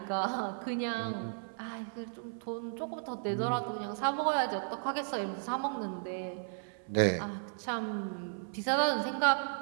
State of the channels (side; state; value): left; silent; 55 dB below the other